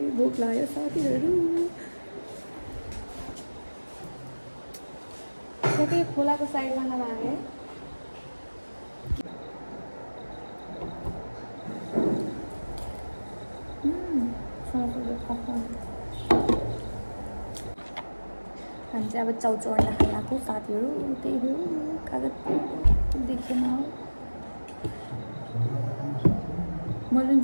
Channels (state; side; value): inverted; both; correlation -1.00